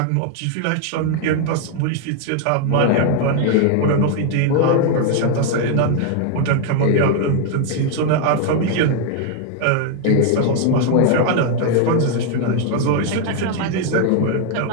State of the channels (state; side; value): different; both; correlation 0.00